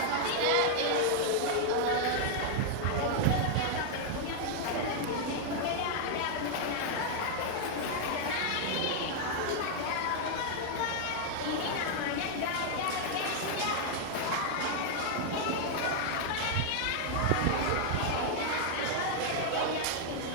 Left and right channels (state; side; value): different; both; correlation 0.00